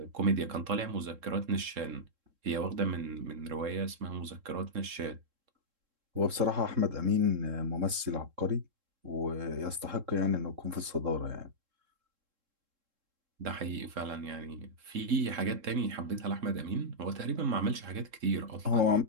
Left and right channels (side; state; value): left; late; 3.7 ms